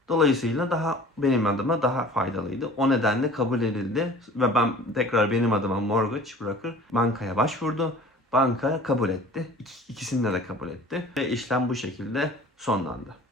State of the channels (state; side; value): normal; both; correlation 0.45